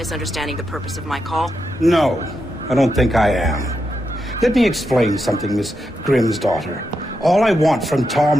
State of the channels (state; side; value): normal; both; correlation 0.85